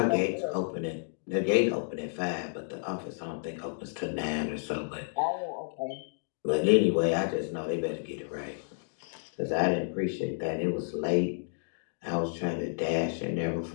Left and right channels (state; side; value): silent; right; digital silence